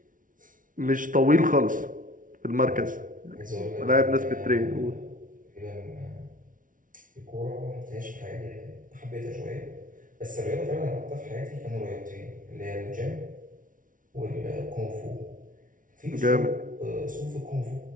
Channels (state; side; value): late; left; 0.38 ms